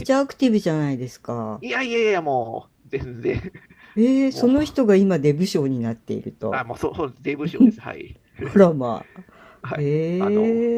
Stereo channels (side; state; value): both; identical; correlation 1.00